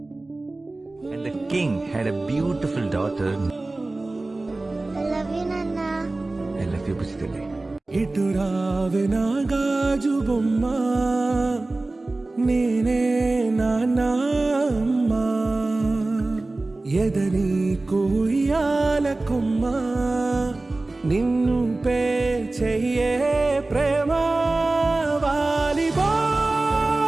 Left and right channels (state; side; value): quieter; left; 3.0 dB